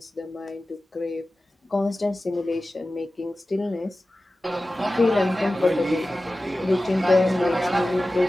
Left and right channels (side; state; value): both; normal; correlation 0.95